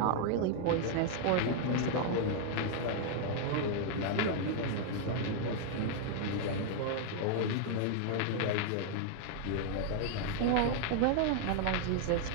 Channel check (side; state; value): both; different; correlation 0.00